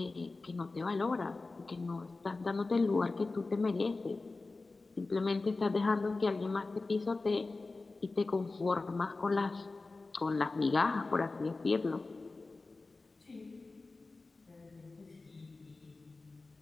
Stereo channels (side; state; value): right; quieter; 3.5 dB